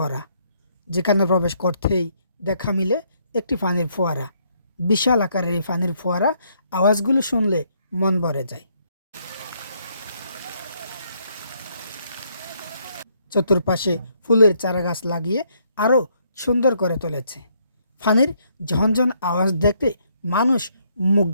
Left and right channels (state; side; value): inverted; both; correlation -0.71